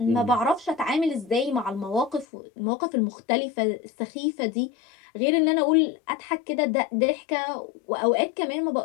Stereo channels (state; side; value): drops out; right; at 2.2 s